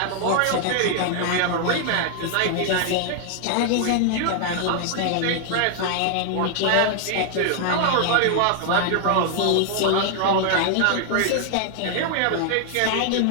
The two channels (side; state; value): both; different; correlation 0.00